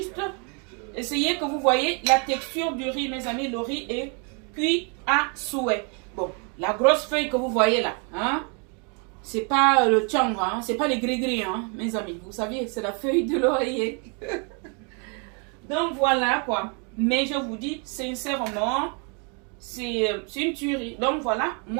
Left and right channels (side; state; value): left; quieter; 36.6 dB